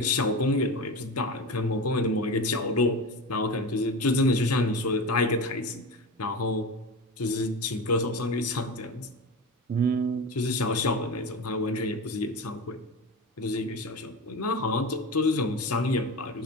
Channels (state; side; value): normal; both; correlation 0.26